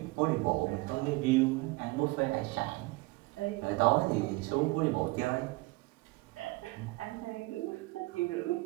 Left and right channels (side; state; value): left; quieter; 22.7 dB